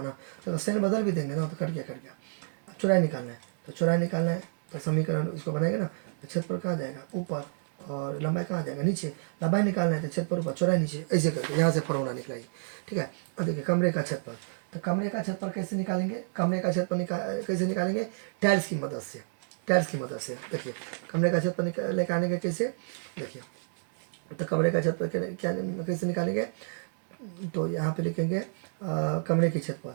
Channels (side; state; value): left; silent; 58 dB below the other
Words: ना। तो साइन बदल भी देंगे ना तो कट गया। अब चौड़ाई निकालना है, तो चौड़ाई निकालना है तो समीकरण इसको बनाएंगे ना, तो क्षेत्रफल कहाँ जाएगा ऊपर और लंबाई कहाँ जाएगा नीचे। लंबाई निकालना है तो क्षेत्रफल ऊपर चौड़ाई नीचे, ऐसे करके यहाँ से फॉर्मूला निकलाइए, ठीक है। अब देखिए कमरे का क्षेत्रफल, तो कमरे का क्षेत्रफल कैसे निकालेंगे, कमरे का क्षेत्रफल कैसे निकालेंगे, टाइल्स की मदद से, टाइल्स की मदद से। देखिए कमरे का क्षेत्रफल निकालेंगे कैसे, देखिए तो कमरे का क्षेत्रफल क्या कैसे निकालेंगे, तो यहाँ पे लिखेंगे कमरे के क्षेत्रफल।